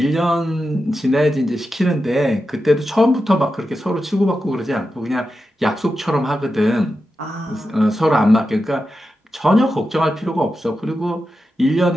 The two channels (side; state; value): both; normal; correlation 0.90